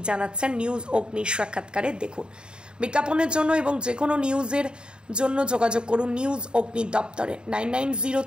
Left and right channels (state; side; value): late; left; 0.050 ms